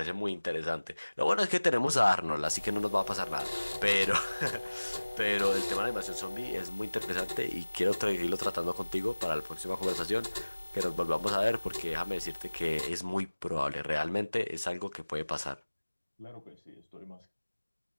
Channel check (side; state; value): both; inverted; correlation -1.00